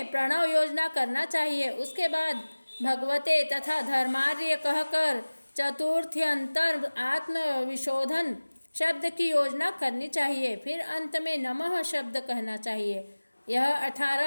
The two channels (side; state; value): both; inverted; correlation -1.00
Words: प्रणव योजना करना चाहिए। उसके बाद भगवते तथा धर्मार्य कहकर चतुर्थ्यंतर आत्मविशोधन शब्द की योजना करनी चाहिए। फिर अंत में नमः शब्द कहना चाहिए। यह